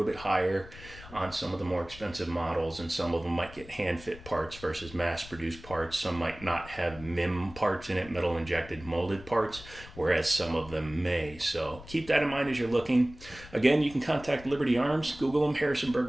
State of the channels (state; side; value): noise; left; rumble, 17 dB below the sound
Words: bit higher on some of the more expensive models, and some of them might get hand fit parts versus mass produced parts. Some might not have MIM parts in it, metal injected molded parts, whereas some of them may. So keep that in mind as you're looking. Again, you can contact Liberty Arms, Google them, Harrisonburg,